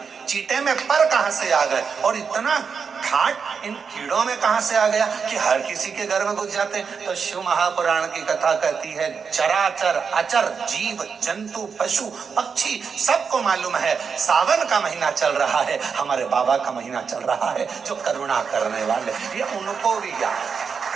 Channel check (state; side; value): quieter; left; 6.0 dB